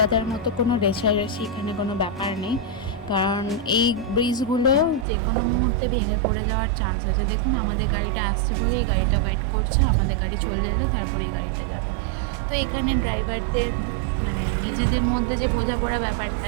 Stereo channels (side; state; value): left; drops out; at 5.1 s